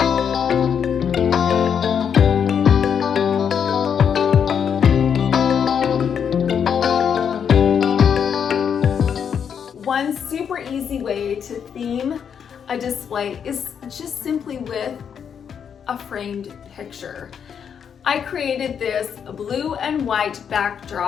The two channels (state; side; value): quieter; right; 7.6 dB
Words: One super easy way to theme a display is just simply with a framed picture. I created this blue and white